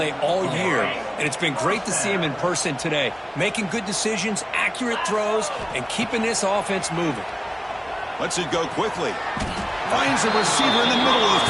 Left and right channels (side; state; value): both; identical; correlation 1.00